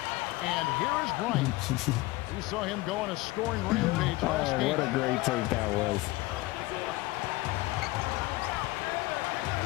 And here is Bryant. We saw him go on a scoring rampage last Oh, game. what a great take that was.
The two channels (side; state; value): right; quieter; 20.3 dB